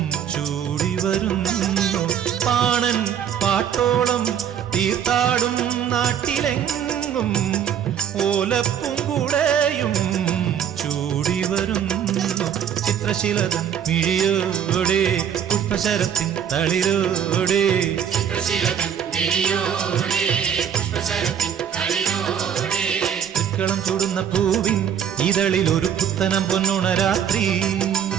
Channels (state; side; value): quieter; left; 8.7 dB